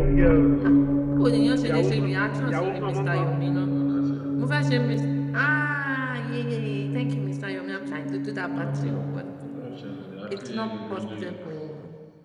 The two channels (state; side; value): identical; both; correlation 1.00